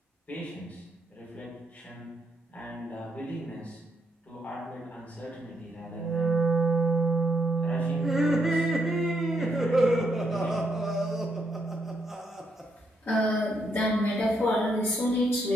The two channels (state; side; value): normal; both; correlation 0.76